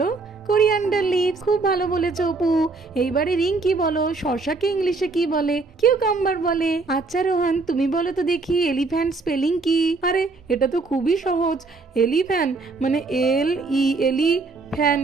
Coriander leaves. খুব ভালো বলেছো অপু। এইবারে রিঙ্কি বলো, শশাকে ইংলিশে কি বলে? কিউকাম্বার বলে। আচ্ছা রোহান, তুমি বলো তো দেখি, এলিফ্যান্ট স্পেলিং কি? আরে এটা তো খুবই সহজ, এলিফ্যান্ট মানে LELI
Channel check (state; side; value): quieter; left; 3.8 dB